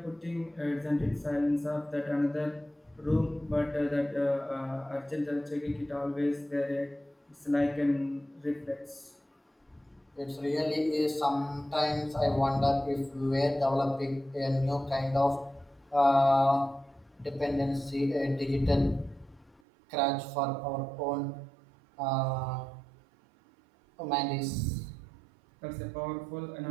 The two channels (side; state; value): left; drops out; at 19.6 s